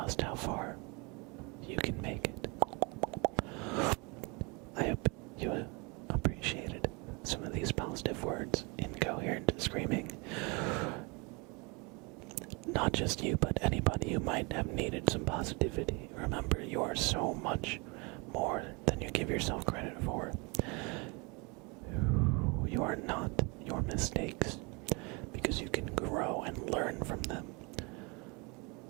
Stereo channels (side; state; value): left; quieter; 29.6 dB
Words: how far you can make it. I hope you appreciated some of these positive words, incoherent screaming. Not just you, but anybody who might have needed some positivity. Remember, you are so much more than you give yourself credit for. You are not your mistakes, because you can grow and learn from them.